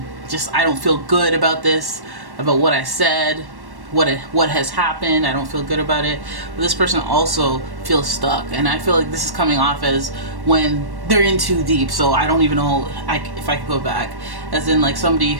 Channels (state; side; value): late; left; 1.1 ms